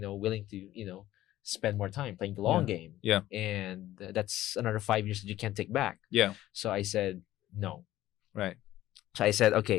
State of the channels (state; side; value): quieter; right; 14.5 dB